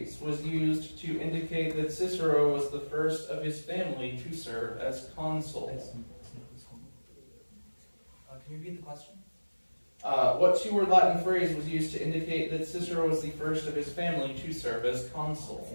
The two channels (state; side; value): inverted; both; correlation -1.00